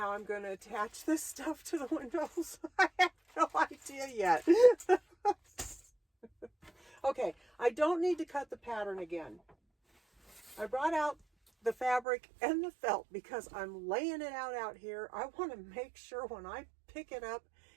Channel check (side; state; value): left; drops out; at 12.1 s